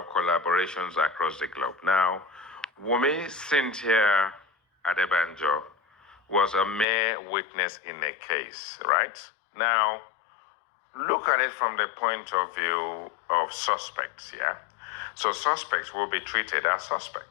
collaborations across the globe. Now, Wumi Cynthia Adebanjo was a mere witness in a case, right? Now, look at it from the point of view of suspects, yeah? So suspects will be treated as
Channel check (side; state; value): right; drops out; at 6.9 s